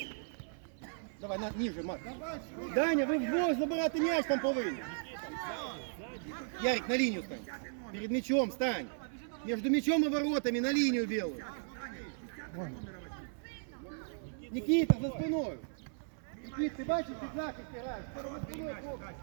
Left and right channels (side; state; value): left; silent; 54 dB below the other